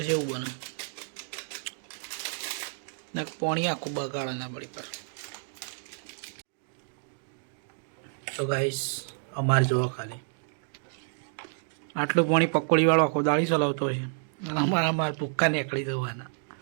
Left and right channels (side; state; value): left; silent; digital silence